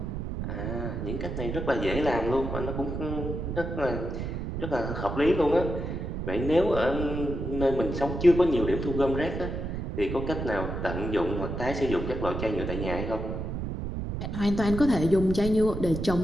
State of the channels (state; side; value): noise; right; rumble, 4 dB below the sound